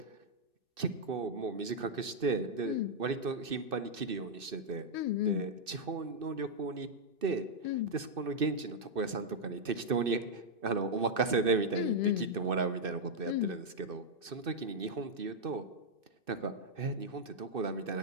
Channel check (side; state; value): left; late; 2.6 ms